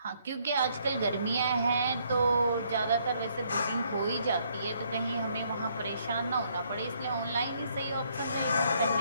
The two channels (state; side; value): inverted; both; correlation -0.69